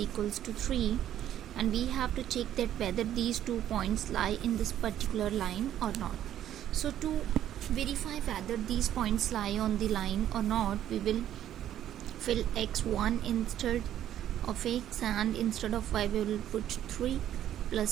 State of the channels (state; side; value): quieter; left; 11.4 dB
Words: to 3, and we have to check that whether these 2 points lie in this particular line or not. So to verify whether these points lie on the line or not, we will fill x1 instead of x, and instead of y we will put 3